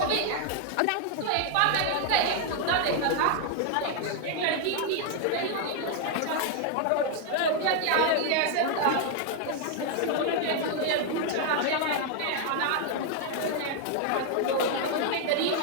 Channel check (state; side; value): different; both; correlation 0.00